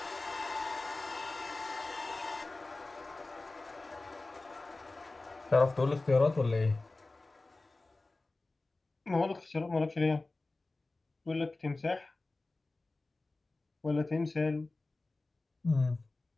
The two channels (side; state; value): right; quieter; 3.2 dB